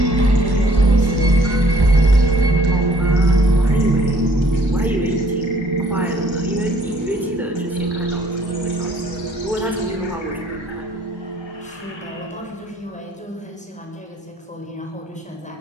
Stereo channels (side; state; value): both; normal; correlation 0.60